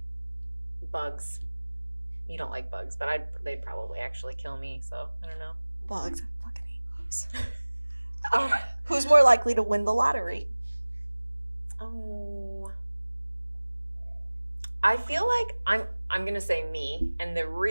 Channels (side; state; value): both; inverted; correlation -1.00